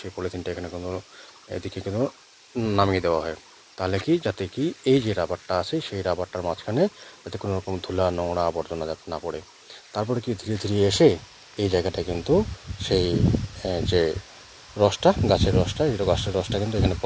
সেই পলিথিনটা এখানে কিন্তু এদিকে কিন্তু নামিয়ে দেওয়া হয়। তাহলে কি, যাতে কি এই যে রাবারটা আছে সেই রাবারটার মাঝখানে যাতে কোনো রকম ধুলা নোংরা আবর্জনা যাতে না পড়ে। তারপরে কি ধীরে ধীরে এসে এই জায়গাটা কিন্তু সেই যে রসটা, গাছের রসটা, এই গাছের রসটা কিন্তু এখানে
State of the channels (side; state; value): both; identical; correlation 1.00